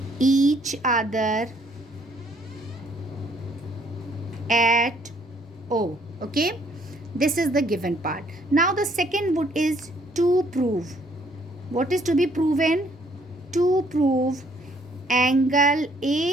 each other at O. Okay, this is the given part. Now the second bit is to prove. What is to be proven? To prove angle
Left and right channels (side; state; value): both; normal; correlation 0.65